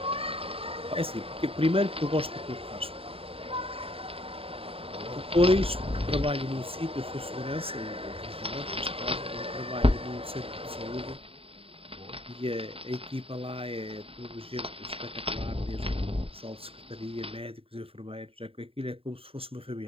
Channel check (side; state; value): left; late; 0.27 ms